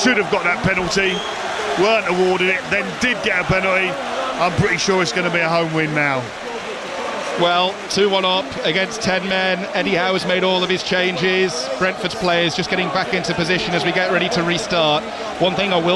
have got that penalty, weren't awarded it, then did get a penalty. I'm pretty sure it's going to be a home win now. Well, 2-1 up against 10 men. Eddie Howe has made all of his changes. Brentford's players just getting back into position as we get ready to restart. One thing I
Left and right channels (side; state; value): both; identical; correlation 1.00